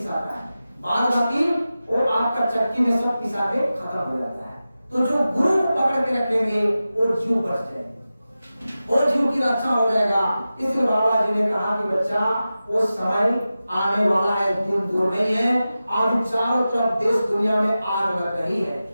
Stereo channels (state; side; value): inverted; both; correlation -0.94